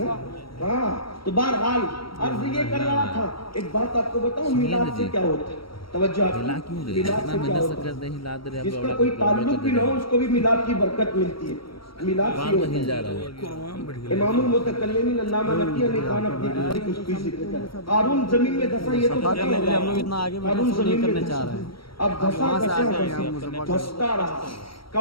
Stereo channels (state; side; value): late; right; 0.74 ms